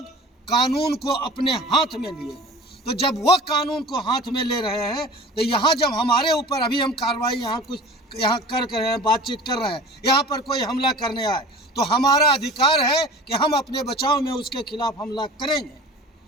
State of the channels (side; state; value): both; normal; correlation 0.40